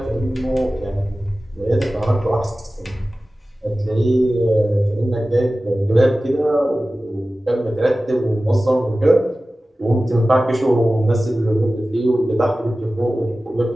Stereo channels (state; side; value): normal; both; correlation 0.96